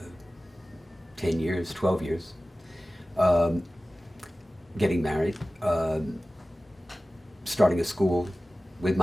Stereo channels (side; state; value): both; normal; correlation 0.96